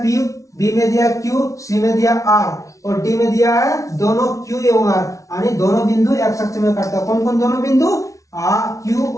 P, बी में दिया है Q, सी में दिया R और डी में दिया है दोनों Q एवं R, यानी दोनों बिंदु x अक्ष में कटता है। कौन कौन दोनों बिंदु? Q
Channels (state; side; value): late; right; 0.16 ms